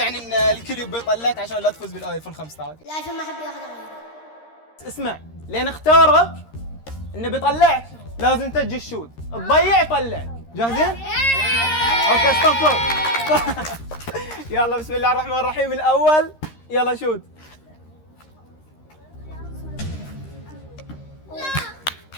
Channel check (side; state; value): right; late; 13 ms